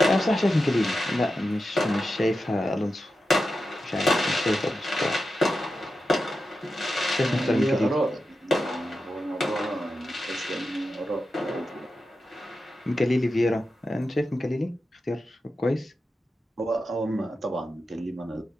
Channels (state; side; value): normal; both; correlation 0.90